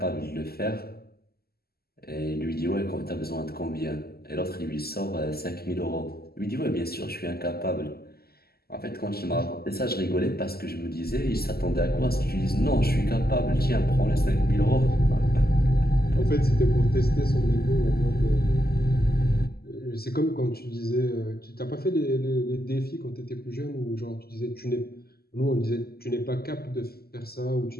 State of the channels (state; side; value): late; right; 0.45 ms